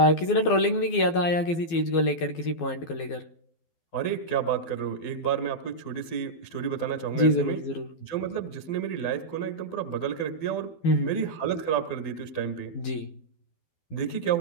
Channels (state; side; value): late; right; 12 ms